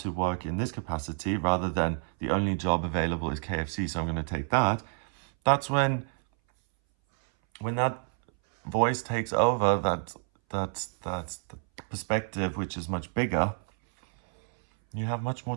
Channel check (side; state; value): left; silent; 59 dB below the other